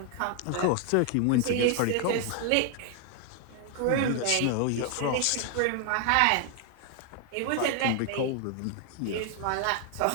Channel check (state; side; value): different; both; correlation 0.00